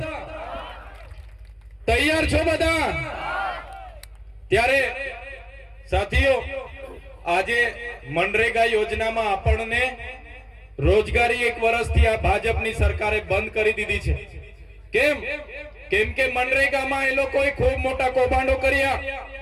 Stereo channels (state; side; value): identical; both; correlation 1.00